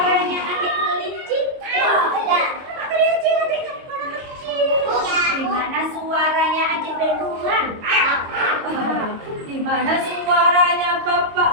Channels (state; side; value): late; left; 22 ms